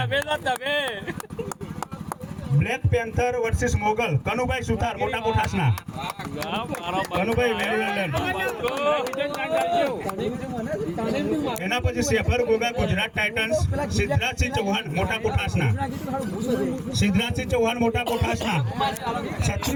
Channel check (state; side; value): identical; both; correlation 1.00